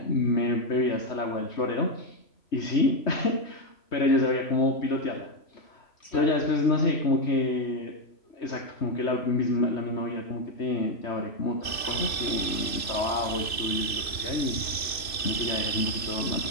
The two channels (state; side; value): late; right; 2.6 ms